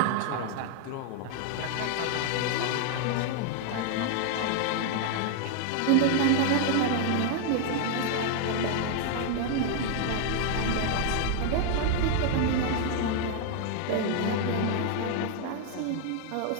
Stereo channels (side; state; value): both; different; correlation 0.00